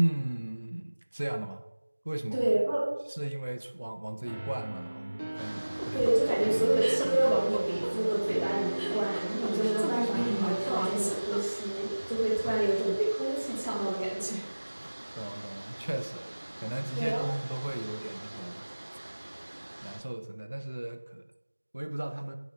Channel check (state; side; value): inverted; both; correlation -1.00